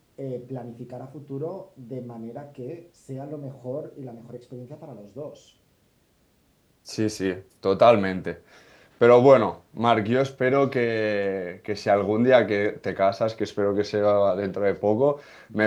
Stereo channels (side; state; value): both; identical; correlation 1.00